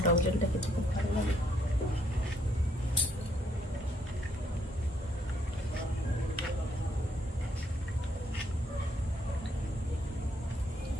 টক জলটা খেতে খুব ভালো লাগে।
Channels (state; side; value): normal; both; correlation 0.71